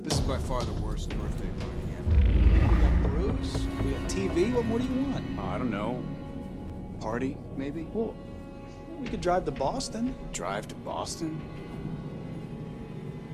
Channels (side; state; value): both; identical; correlation 1.00